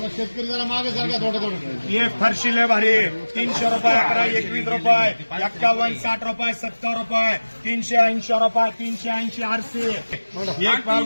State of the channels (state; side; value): inverted; both; correlation -1.00